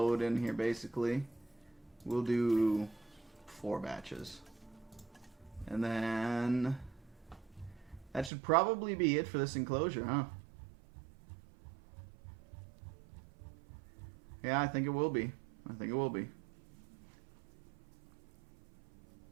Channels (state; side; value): drops out; left; at 8.3 s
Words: in here basically. We'll do 4 batches. And then that should probably be it for this enclosure, huh? Yeah, I think it will be. I think it will be.